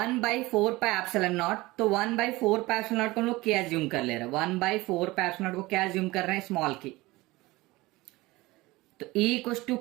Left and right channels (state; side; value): quieter; left; 20.4 dB